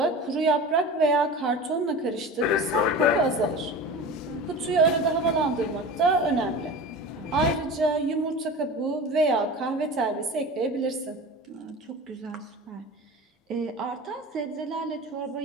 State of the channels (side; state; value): both; normal; correlation 0.33